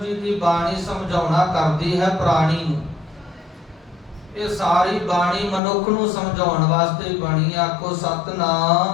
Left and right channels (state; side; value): drops out; right; at 5.6 s